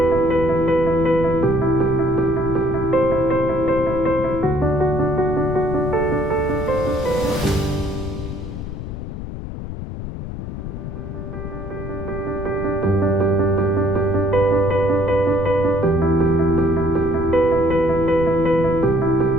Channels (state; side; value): noise; left; rumble, 8 dB below the sound